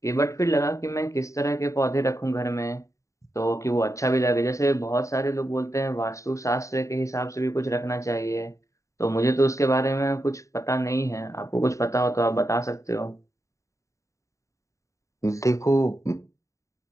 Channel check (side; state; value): right; late; 0.15 ms